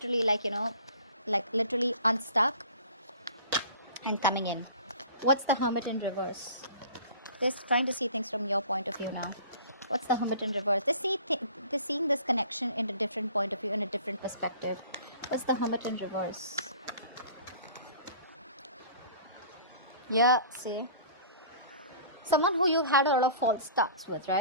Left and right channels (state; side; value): inverted; both; correlation -0.44